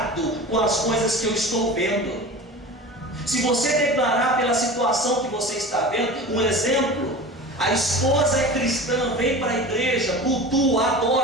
com as coisas que eu estou vendo. Se você declarar pela situação que você está vendo, um exemplo, a esposa é cristã, vem para a igreja, cultua,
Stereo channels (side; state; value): both; normal; correlation 0.34